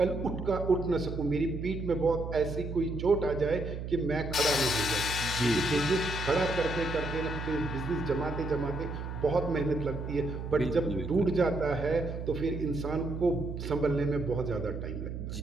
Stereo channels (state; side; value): noise; right; hum, 6 dB below the sound